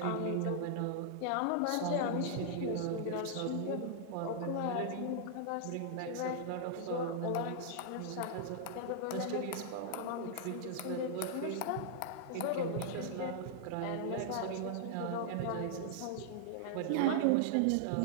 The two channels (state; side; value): different; both; correlation -0.01